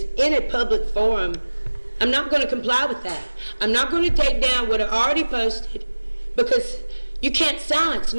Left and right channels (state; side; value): inverted; both; correlation -1.00